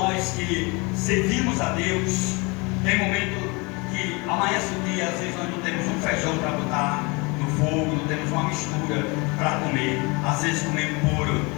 que servimos a Deus, tem momento que amanhece o dia, às vezes nós não temos um feijão para botar no fogo, não temos uma mistura para comer, às vezes comer puro,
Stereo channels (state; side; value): quieter; right; 27.8 dB